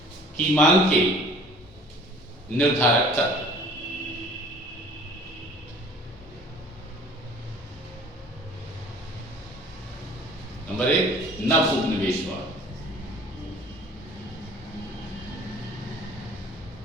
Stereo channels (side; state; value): both; normal; correlation 0.50